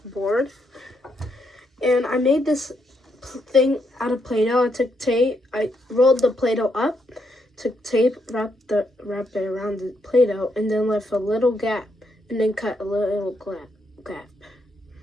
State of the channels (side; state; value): both; normal; correlation 0.78